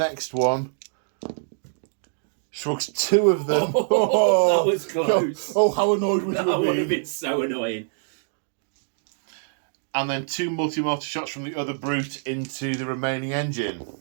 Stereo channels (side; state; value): left; silent; digital silence